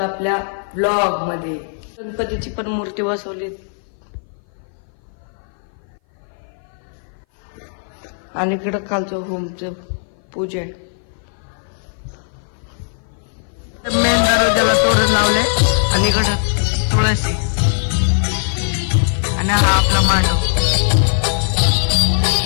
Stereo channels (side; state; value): right; silent; 58 dB below the other